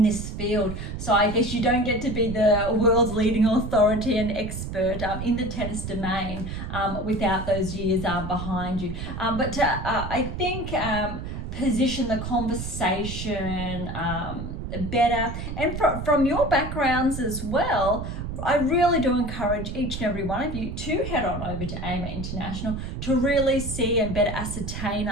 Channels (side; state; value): right; noise; rumble, 6 dB below the sound